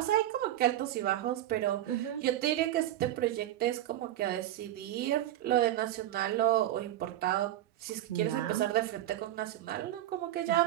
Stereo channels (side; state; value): left; quieter; 13.4 dB